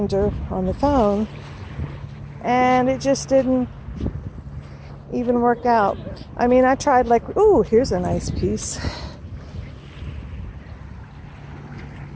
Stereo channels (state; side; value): identical; both; correlation 1.00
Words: on the phone, and it just didn't even work out. I mean, I tried like, ooh, here's a nice piece.